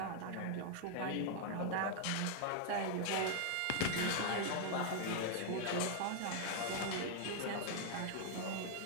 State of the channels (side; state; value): both; different; correlation 0.00